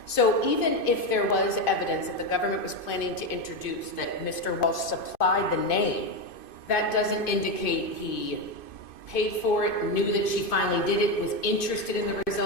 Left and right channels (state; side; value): late; right; 2.5 ms